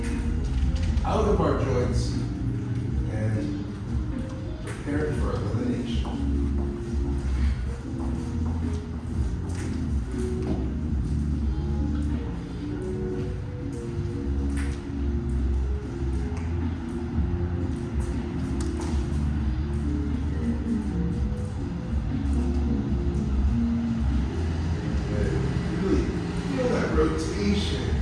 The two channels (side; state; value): both; identical; correlation 1.00